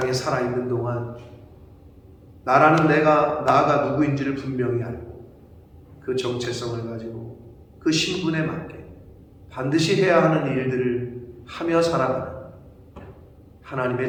살아있는 동안 나가 누구인지를 분명히 알고 그 정체성을 가지고 그 신분에 맞게 반드시 해야 하는 일들을 하며 살아가는 하나님의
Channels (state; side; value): identical; both; correlation 1.00